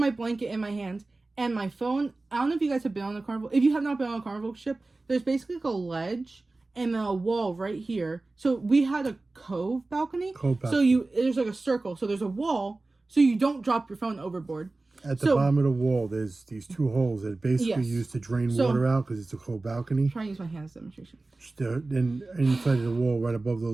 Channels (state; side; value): quieter; left; 3.2 dB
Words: blanket in my hand and my phone. I don't know if you guys have been on the Carnival. If you have not been on a Carnival ship, there's basically like a ledge and a wall right here. So we had a cove balcony. So there's like a circle. So there's a wall so you don't drop your phone overboard. At the bottom of the wall, there's these 2 holes that are basically used to drain water out because it's a cove balcony. I'm trying to use my hand as a demonstration. Then inside of the wall, right above